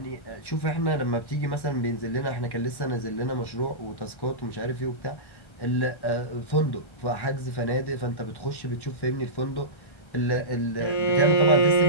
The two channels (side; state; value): right; late; 1.1 ms